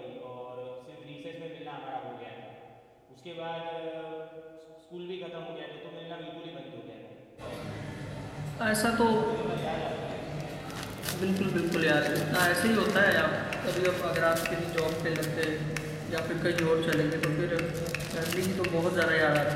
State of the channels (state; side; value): identical; both; correlation 1.00